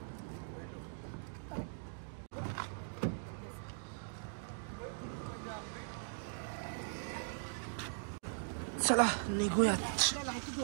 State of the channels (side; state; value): left; silent; digital silence